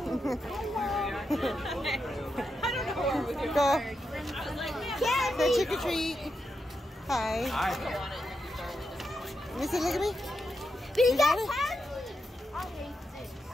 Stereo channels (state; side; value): normal; both; correlation 0.85